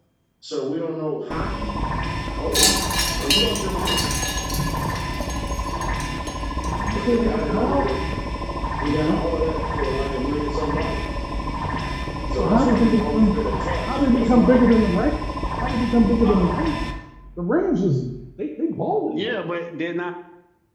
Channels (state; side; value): identical; both; correlation 1.00